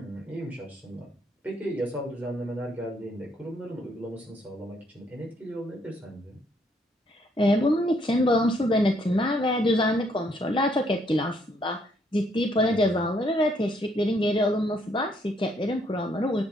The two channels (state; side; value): normal; both; correlation 0.70